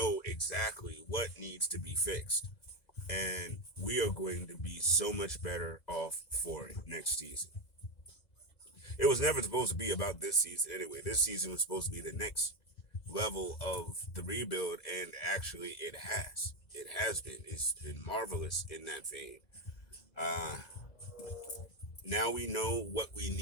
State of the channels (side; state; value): right; late; 2.0 ms